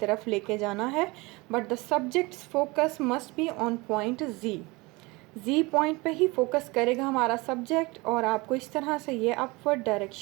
लेके जाना है, but the subject's focus must be on point G point पे ही फोकस करेगा हमारा सब्जेक्ट और आपको इस तरह से ये अपवर्ड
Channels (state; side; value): quieter; left; 24.4 dB